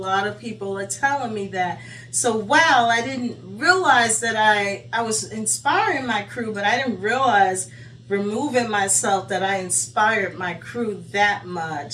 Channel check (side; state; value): both; identical; correlation 1.00